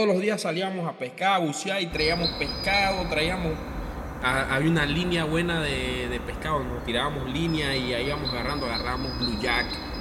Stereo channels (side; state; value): both; identical; correlation 1.00